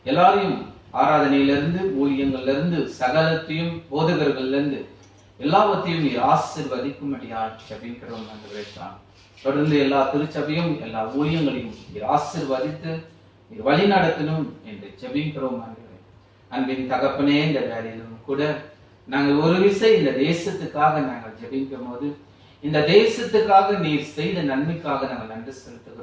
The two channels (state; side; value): identical; both; correlation 1.00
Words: எல்லாரையும் ஆராதனையிலிருந்து ஊழியங்கள்ல இருந்து சகலத்தையும் போதகர்கள்ல இருந்து எல்லாவற்றையும் நீர் ஆசீர்வதிக்கும்படியாக ஜெபிக்கிறோம். தொடர்ந்து எல்லா திருச்சபையும் எல்லா ஊழியங்களையும் நீர் ஆசீர்வதித்து நீர் வழி நடத்தணும் என்று ஜெபிக்கிறோம். அன்பின் தகப்பனே, இந்த வேலையிலும் கூட நாங்கள் ஒரு விசை இந்த தேசத்துக்காக நாங்கள் ஜெபிக்கும் போது இந்த தேசத்துக்காக நீர் செய்த நன்மைக்காக நாங்கள் நன்றி